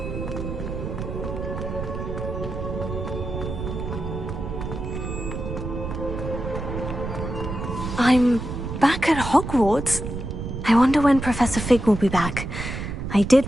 I'm back at Hogwarts. I wonder when Professor Fig will be back. I did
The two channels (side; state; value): right; noise; rumble, 6 dB below the sound